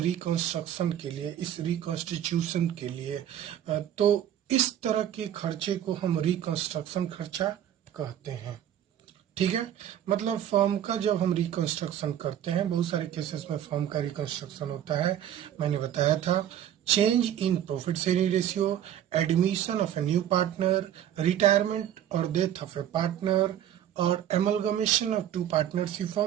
के लिए, इस रिकॉन्स्टिट्यूशन के लिए। तो इस तरह के खर्चे को हम रिकंस्ट्रक्शन खर्चा कहते हैं। ठीक है, मतलब फॉर्म का जब हम रिकंस्ट्रक्शन करते हैं, बहुत सारे केसेस में फॉर्म का रिकंस्ट्रक्शन होता है। मैंने बताया था change in profit sharing ratio, admission of a new partner, retirement और डेथ ऑफ ए पार्टनर और एमलगमेशन ऑफ 2 पार्टनरशिप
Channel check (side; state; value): left; quieter; 10.8 dB